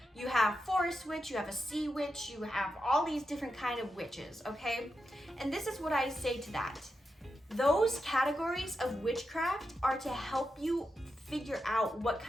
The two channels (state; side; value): normal; both; correlation 0.87